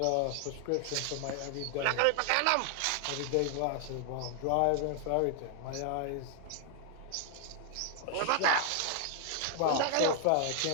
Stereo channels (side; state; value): both; different; correlation 0.00